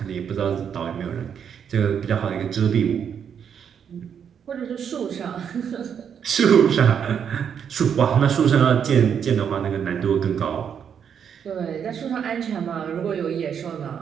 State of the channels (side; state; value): left; quieter; 7.8 dB